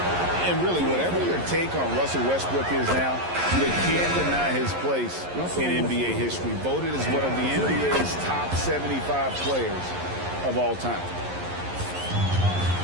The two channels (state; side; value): late; left; 11 ms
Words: And really, whatever your take on Russell Westbrook is now, you can't deny his place in NBA history. Voted as one of the NBA's top 75 players of all time.